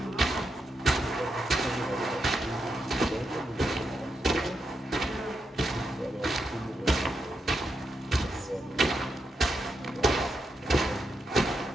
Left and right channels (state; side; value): normal; both; correlation 0.84